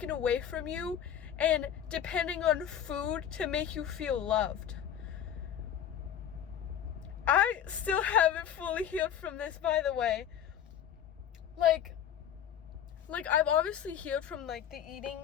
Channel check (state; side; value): quieter; right; 9.5 dB